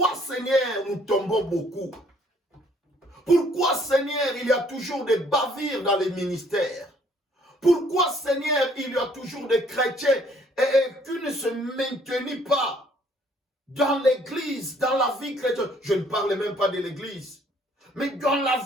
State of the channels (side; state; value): both; normal; correlation 0.62